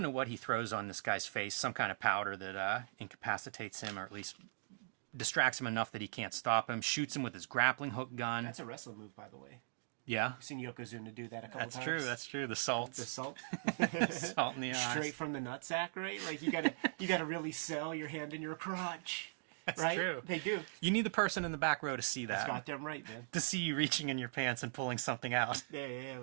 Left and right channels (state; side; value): silent; left; digital silence